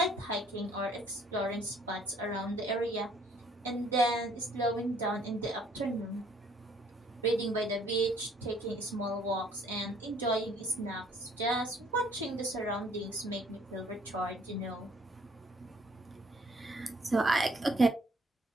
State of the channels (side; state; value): both; normal; correlation 0.61